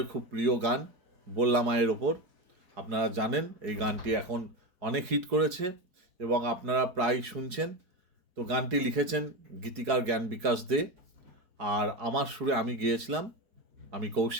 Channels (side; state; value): left; late; 4.7 ms